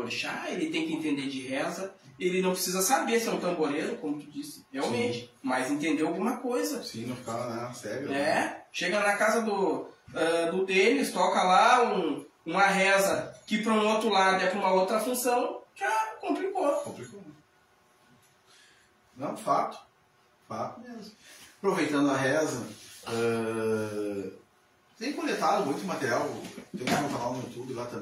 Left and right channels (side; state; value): both; identical; correlation 1.00